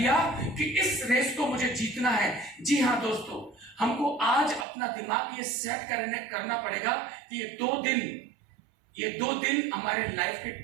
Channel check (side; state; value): left; drops out; at 4.7 s